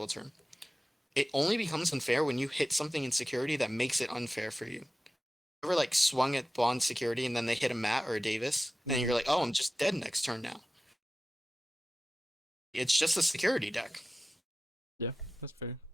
turn. It only becomes unfair when you hit something in security that makes it unfair for you. Ever like swung at Bond security and then they hit a Matt or a Davis, and you're like, oh, I'm just dead next turn now. It's just a security deck. Yeah, that's fair.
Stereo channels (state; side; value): normal; both; correlation 0.95